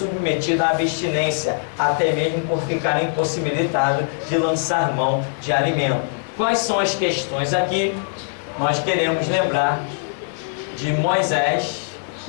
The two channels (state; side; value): silent; right; digital silence